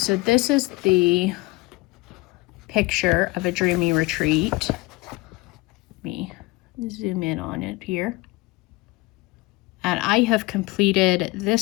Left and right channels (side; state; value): right; quieter; 21.8 dB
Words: this is the picture of a Dreamy Retreat. Let me zoom in on it here. And I have completed